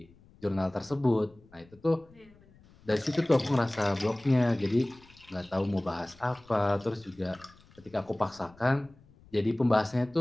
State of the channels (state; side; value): noise; left; rumble, 27 dB below the sound